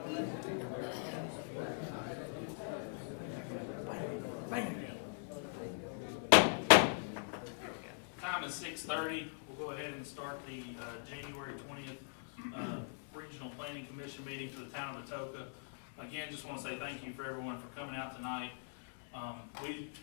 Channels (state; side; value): silent; right; 51 dB below the other